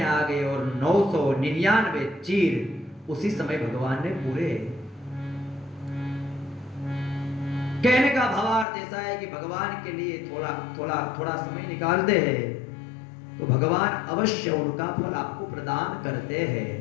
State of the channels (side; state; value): right; drops out; at 8.7 s